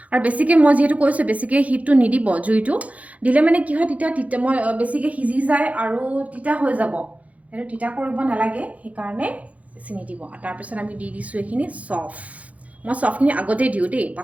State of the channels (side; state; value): left; late; 0.068 ms